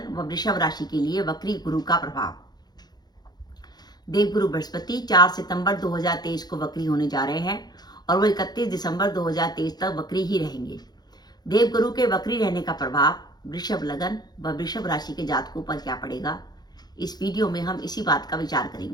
व वृषभ राशि के लिए वक्री गुरु का प्रभाव। देवगुरु बृहस्पति 4 सितंबर 2023 को वक्री होने जा रहे हैं और वो 31 दिसंबर 2023 तक वक्री ही रहेंगे। देवगुरु के वक्री रहने का प्रभाव वृषभ लगन व वृषभ राशि के जातकों पर क्या पड़ेगा, इस वीडियो में हम इसी बात का विचार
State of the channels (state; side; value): late; right; 0.20 ms